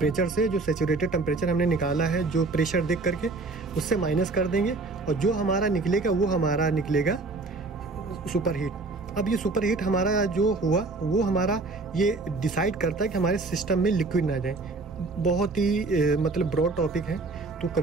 से जो सैचुरेटेड टेम्परेचर हमने निकाला है जो प्रेशर देख करके, उससे माइनस कर देंगे, और जो हमारा निकलेगा वो हमारा निकलेगा सुपर हीट। अब ये सुपर हीट हमारा जो हुआ वो हमारा ये डिसाइड करता है कि हमारे सिस्टम में लिक्विड ना जाए। बहुत ही मतलब ब्रॉड टॉपिक है, तो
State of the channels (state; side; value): quieter; left; 3.5 dB